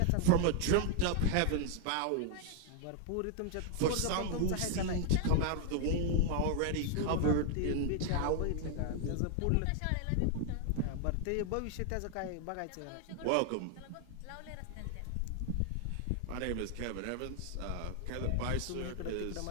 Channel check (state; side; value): different; both; correlation 0.00